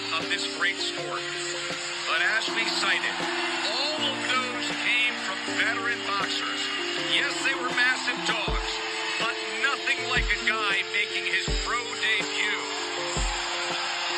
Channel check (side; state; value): both; identical; correlation 1.00